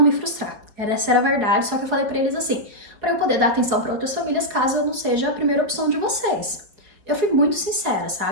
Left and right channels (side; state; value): left; late; 4.8 ms